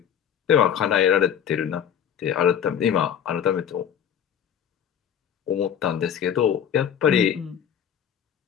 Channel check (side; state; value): right; quieter; 8.8 dB